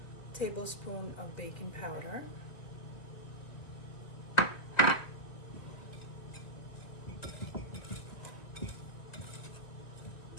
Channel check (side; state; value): right; late; 2.1 ms